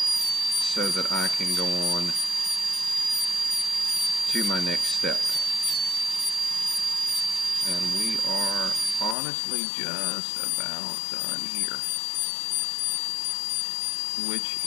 so that I can go on to my next step. And we are honestly just about done here, which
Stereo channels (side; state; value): right; drops out; at 9.2 s